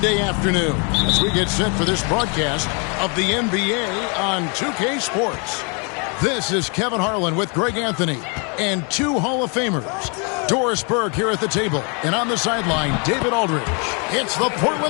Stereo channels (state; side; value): quieter; right; 35.0 dB